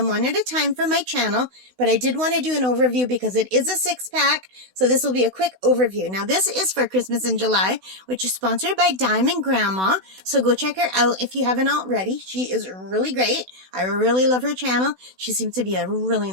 one at a time for my channel, but I did want to do an overview because it is a 6-pack, so this will be a quick overview. Now this is for Christmas in July, which is sponsored by Diamond Grandma, so go check her out if you haven't already. She is really great. I really love her channel. She seems to be a really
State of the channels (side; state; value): left; late; 16 ms